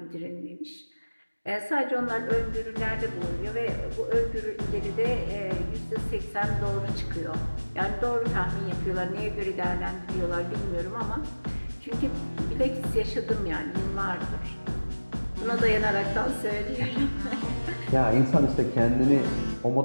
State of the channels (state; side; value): inverted; both; correlation -1.00